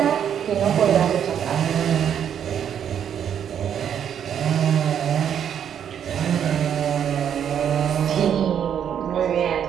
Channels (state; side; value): quieter; left; 8.8 dB